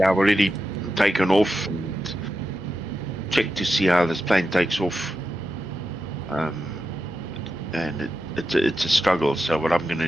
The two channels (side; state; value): left; noise; hum, 19 dB below the sound